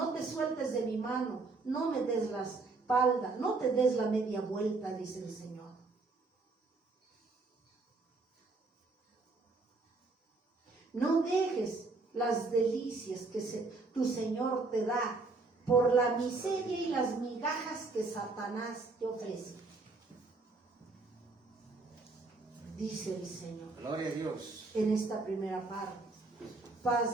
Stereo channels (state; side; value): quieter; left; 3.6 dB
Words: te sueltes de mi mano, no me des la espalda, no te des la media vuelta, dice el Señor. No dejes las delicias que tu Señor te da por la miseria y las migajas que Satanás te ofrece. Dice el Señor Gloria a Dios. en esta primera parte.